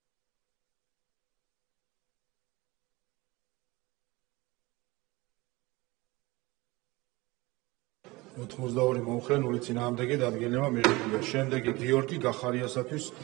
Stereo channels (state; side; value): quieter; left; 22.4 dB